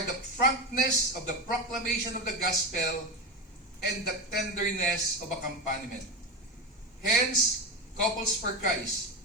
the frankness of the proclamation of the gospel and the tenderness of accompaniment. Hence, Couples for Christ,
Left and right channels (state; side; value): normal; both; correlation 0.18